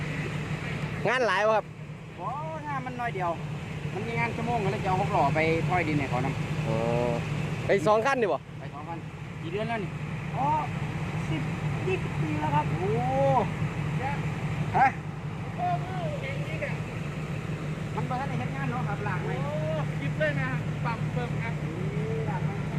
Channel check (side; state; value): both; identical; correlation 1.00